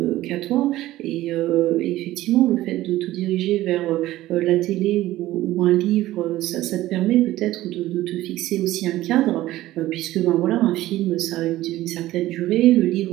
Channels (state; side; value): quieter; left; 15.7 dB